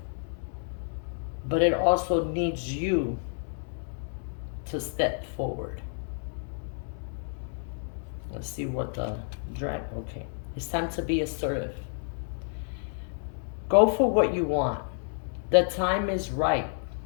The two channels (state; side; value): silent; right; 58 dB below the other